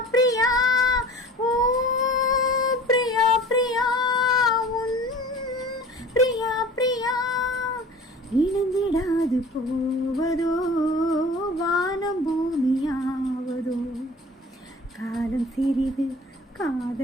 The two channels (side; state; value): both; normal; correlation 0.43